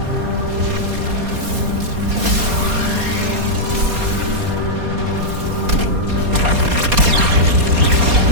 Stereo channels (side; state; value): left; late; 4.2 ms